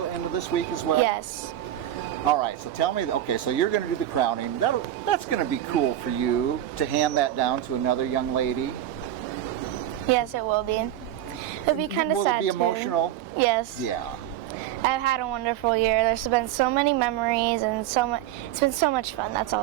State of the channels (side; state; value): left; quieter; 12.4 dB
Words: this week as well? Yes. All right, so tell me, okay, so you're going to do the crowning. That's going to be cool for you to hand that down to another young lady. Yes, it will be. It'll be kind of sad. Will it be too. emotional? Yes. Yeah. I've had a wonderful year. There's been so many memories and it's been so much fun. That's